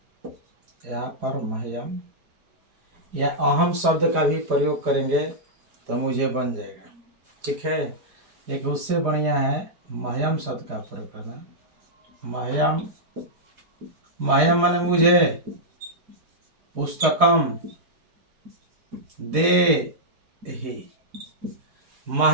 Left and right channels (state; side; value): late; left; 4.8 ms